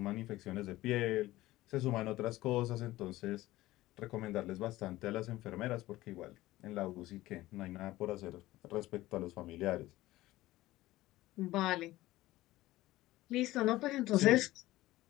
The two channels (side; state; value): right; quieter; 17.1 dB